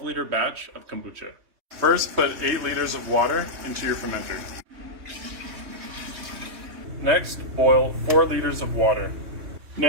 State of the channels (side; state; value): left; late; 3.2 ms